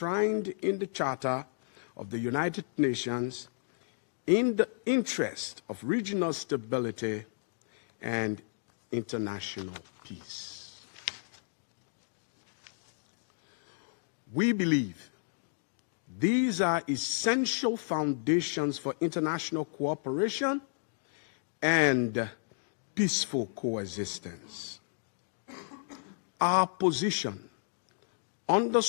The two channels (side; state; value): right; silent; digital silence